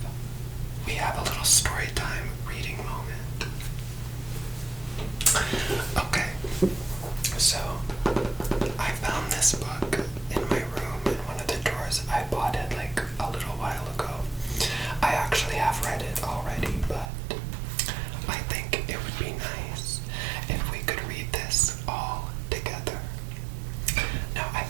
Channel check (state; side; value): drops out; left; at 17.1 s